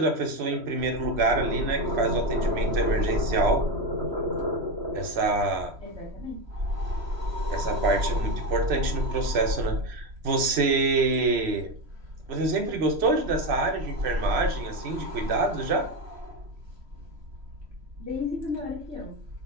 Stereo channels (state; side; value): late; left; 3.1 ms